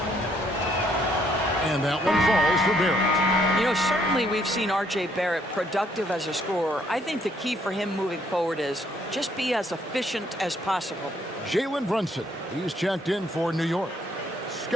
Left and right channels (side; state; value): both; normal; correlation 0.68